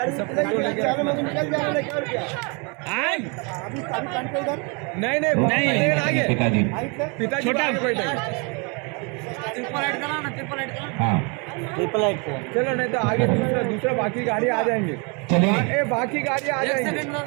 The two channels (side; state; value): left; quieter; 32.8 dB